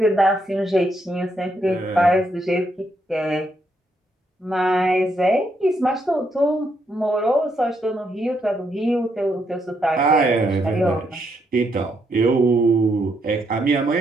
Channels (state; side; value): normal; both; correlation 0.77